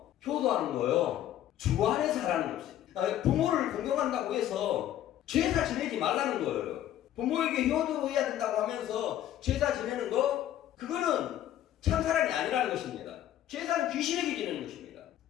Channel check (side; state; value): right; quieter; 12.0 dB